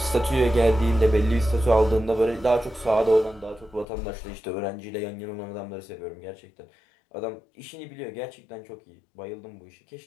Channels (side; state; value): right; drops out; at 3.9 s